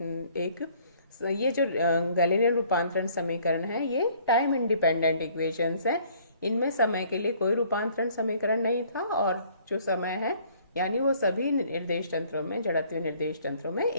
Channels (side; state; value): both; inverted; correlation -0.59